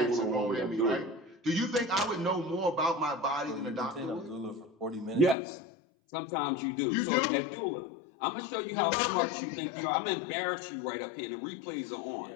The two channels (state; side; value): drops out; right; at 5.4 s